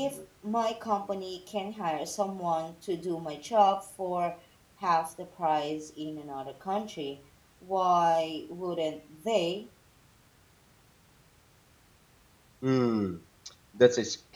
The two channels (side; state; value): both; identical; correlation 1.00